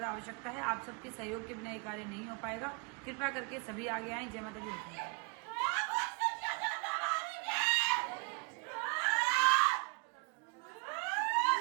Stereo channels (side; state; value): left; quieter; 33.3 dB